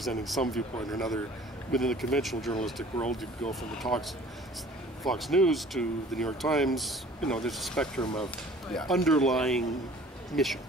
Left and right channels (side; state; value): both; normal; correlation 0.50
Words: some viewpoint or another within the conventional journalistic world, you go from the talks Fox News to the New York Times, there's a spectrum of underlying mission,